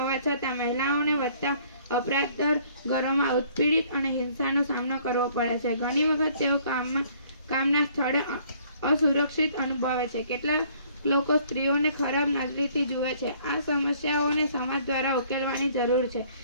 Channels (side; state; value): both; inverted; correlation -0.59